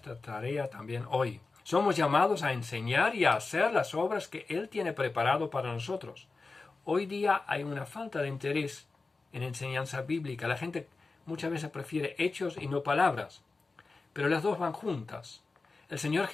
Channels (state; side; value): quieter; right; 3.9 dB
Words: tarea también hoy. Somos llamados a enseñar y a hacer las obras que Él tiene preparado para nosotros. Hoy día hay una falta de interés en enseñanza bíblica. La gente muchas veces prefiere hechos y no palabras, pero las dos van juntas. El Señor